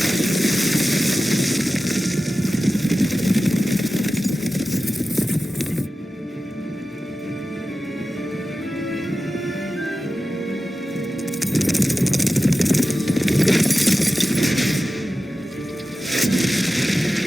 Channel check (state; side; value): normal; both; correlation 0.94